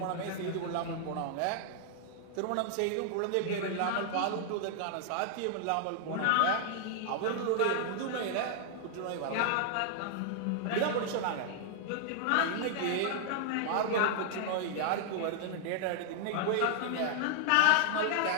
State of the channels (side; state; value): both; different; correlation 0.00